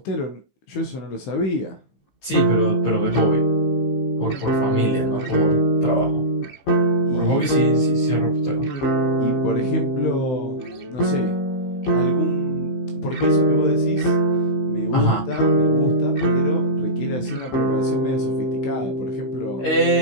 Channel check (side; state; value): right; late; 15 ms